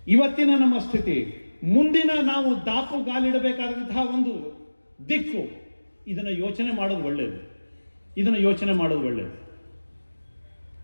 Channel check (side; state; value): both; inverted; correlation -1.00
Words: ಇವತ್ತಿನ ನಮ್ಮ ಸ್ಥಿತಿ, ಮುಂದಿನ ನಾವು ದಾಪುಗಾಲಿಡಬೇಕಾದಂತಹ ಒಂದು ದಿಕ್ಕು, ಇದನ್ನ ಯೋಚನೆ ಮಾಡೋದು ಒಳ್ಳೆಯದು.